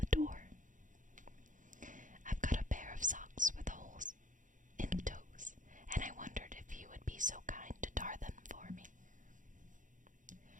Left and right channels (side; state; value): left; late; 0.37 ms